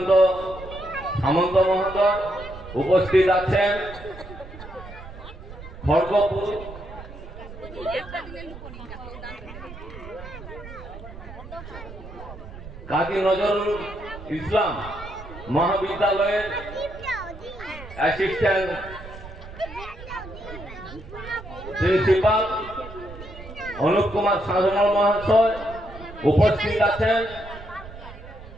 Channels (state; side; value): noise; right; rumble, 14 dB below the sound